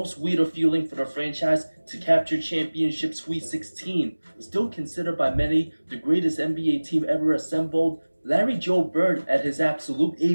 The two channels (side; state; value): both; inverted; correlation -1.00